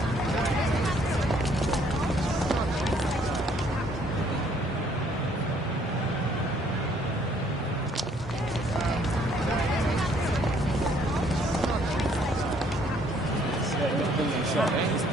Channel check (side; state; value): both; normal; correlation 0.64